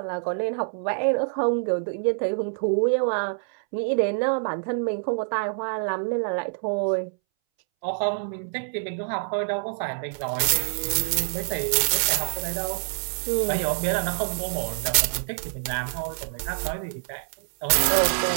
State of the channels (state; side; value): silent; left; 61 dB below the other